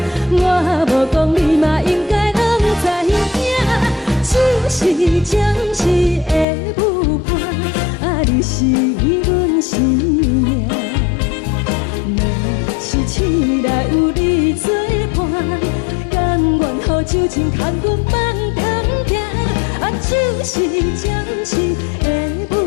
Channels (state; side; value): drops out; right; at 6.5 s